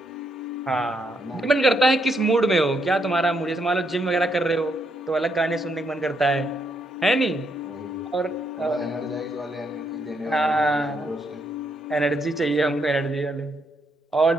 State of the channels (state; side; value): normal; both; correlation 0.76